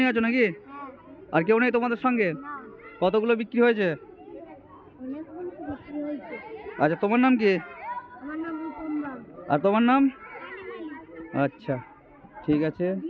আছো নাকি? আর কেউ নেই তোমাদের সঙ্গে? কতগুলো বিক্রি হয়েছে? আচ্ছা তোমার নাম কি? আর তোমার নাম? আচ্ছা ঠিক আছে।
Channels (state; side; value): identical; both; correlation 1.00